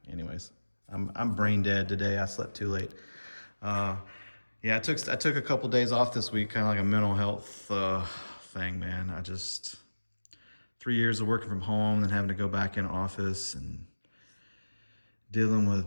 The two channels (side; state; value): both; inverted; correlation -1.00